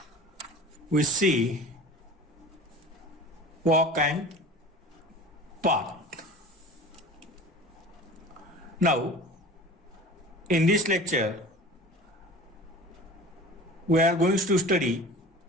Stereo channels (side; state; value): both; normal; correlation 0.39